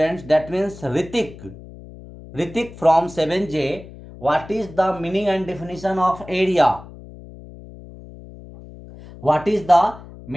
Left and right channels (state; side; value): noise; left; hum, 17 dB below the sound